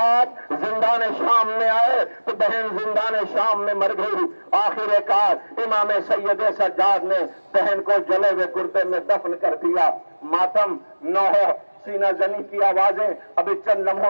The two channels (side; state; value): both; inverted; correlation -1.00